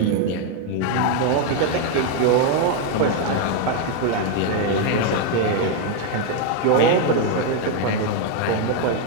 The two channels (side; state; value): both; different; correlation 0.01